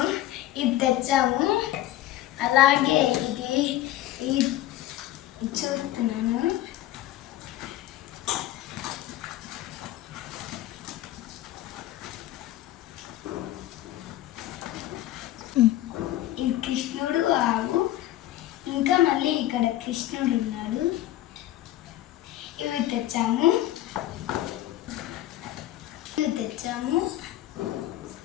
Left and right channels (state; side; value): quieter; right; 14.3 dB